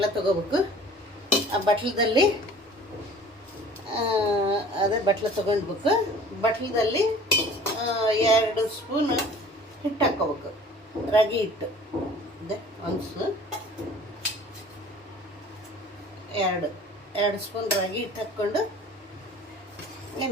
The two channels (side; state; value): both; normal; correlation 0.47